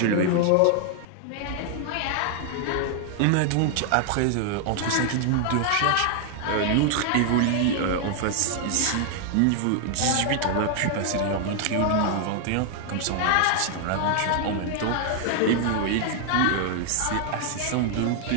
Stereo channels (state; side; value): different; both; correlation 0.00